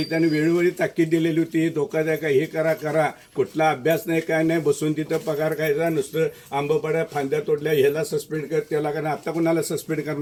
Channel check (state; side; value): identical; both; correlation 1.00